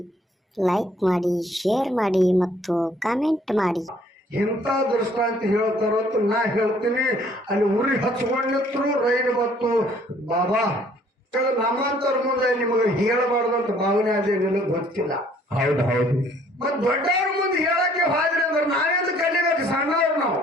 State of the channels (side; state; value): both; normal; correlation 0.60